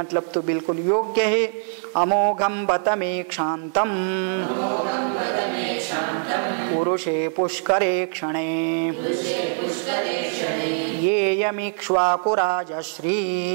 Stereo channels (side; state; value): left; silent; 63 dB below the other